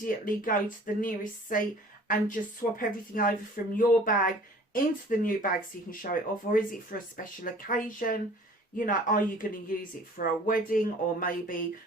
go to the nearest seat and just swap everything over from your bag into the new bag so you can show it off? Or is it for a special occasion? You know, are you going to use it for a wedding or maybe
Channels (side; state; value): both; normal; correlation 0.49